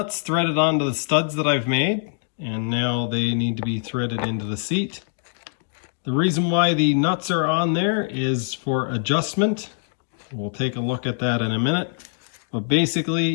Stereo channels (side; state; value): right; silent; digital silence